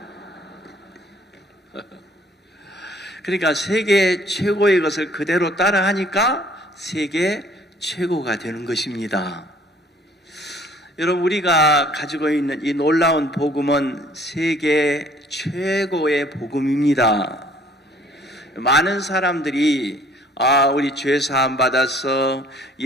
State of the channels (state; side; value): normal; both; correlation 0.58